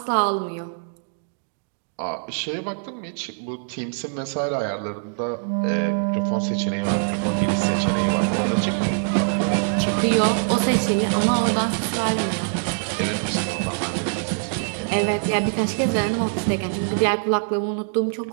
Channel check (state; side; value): silent; left; digital silence